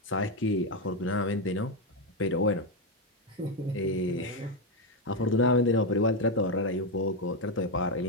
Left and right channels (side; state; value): both; normal; correlation 0.06